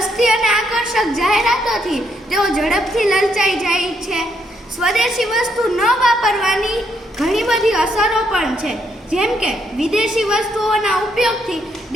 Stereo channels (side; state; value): both; normal; correlation 0.74